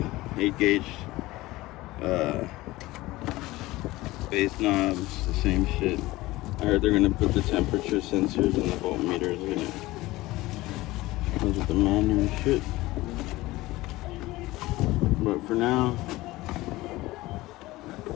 8 gauge base knobs, the same shit. I heard they're gonna put the temperature sensors and the voltmeters in it. Comes with the manual and shit. But for now,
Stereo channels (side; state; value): right; quieter; 18.8 dB